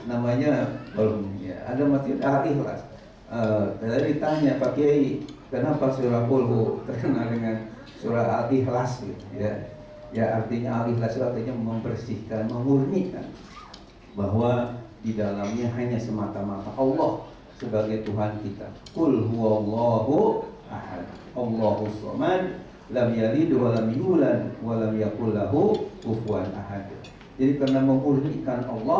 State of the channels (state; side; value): identical; both; correlation 1.00